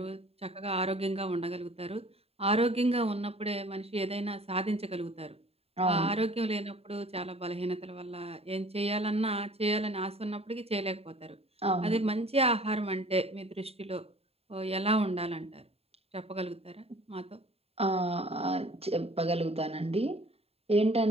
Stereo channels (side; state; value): left; late; 0.29 ms